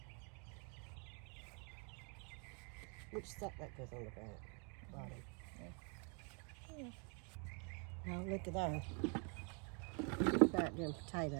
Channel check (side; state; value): left; quieter; 37.1 dB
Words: Which stuff that goes on the bottom? Yeah. Now look at that. Look at them